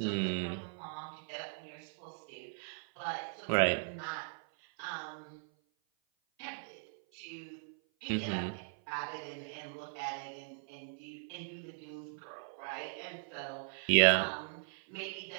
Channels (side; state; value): left; silent; 52 dB below the other